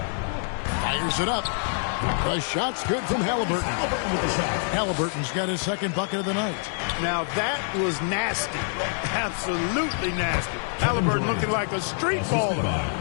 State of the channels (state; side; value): silent; right; 61 dB below the other